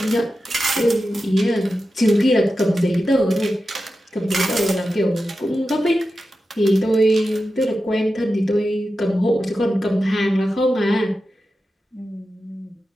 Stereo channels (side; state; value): both; normal; correlation 0.91